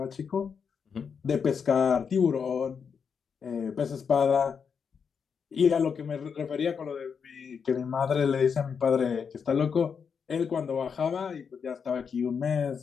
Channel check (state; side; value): quieter; right; 6.4 dB